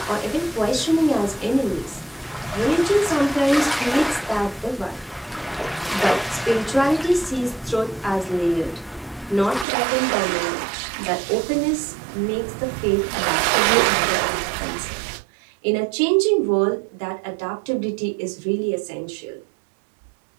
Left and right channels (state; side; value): drops out; left; at 9.7 s